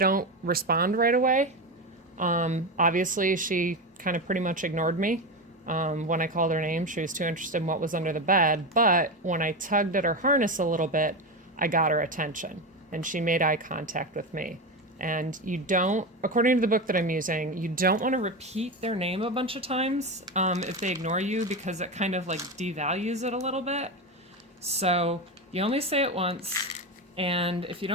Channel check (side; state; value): both; normal; correlation 0.17